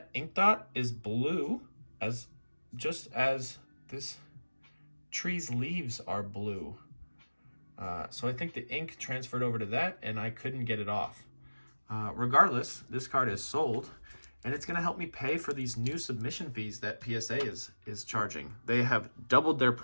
ink dot is blue, just as this tree's leaves are blue. So I think the ink transferred over to that, and I couldn't get it off. Regardless, this card is sold, and it's going to help me pay for these new submission fees that PSA is charging. They have doubled their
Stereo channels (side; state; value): both; inverted; correlation -1.00